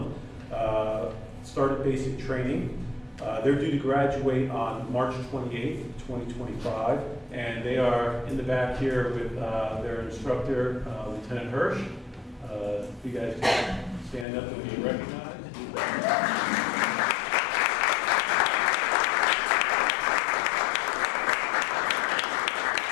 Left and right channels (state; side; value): drops out; right; at 14.2 s